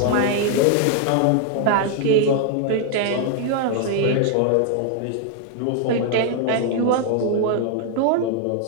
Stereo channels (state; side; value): different; both; correlation 0.00